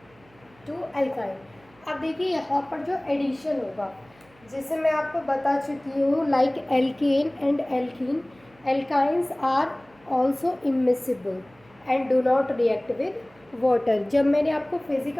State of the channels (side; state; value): right; noise; hum, 29 dB below the sound